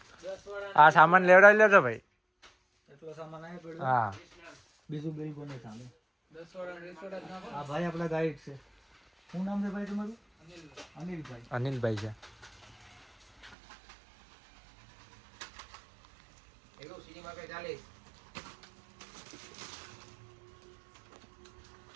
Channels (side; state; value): left; drops out; at 13.6 s